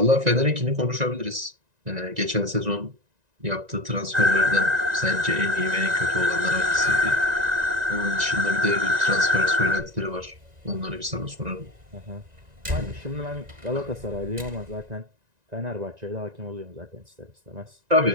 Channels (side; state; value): left; late; 1.9 ms